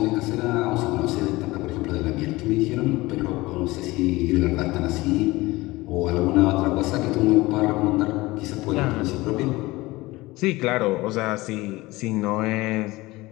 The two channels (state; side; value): quieter; right; 20.4 dB